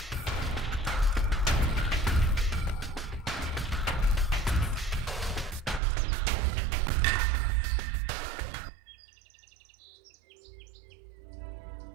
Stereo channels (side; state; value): left; drops out; at 5.8 s